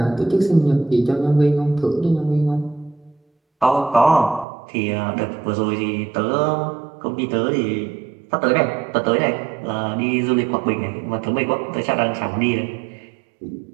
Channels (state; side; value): drops out; left; at 4.5 s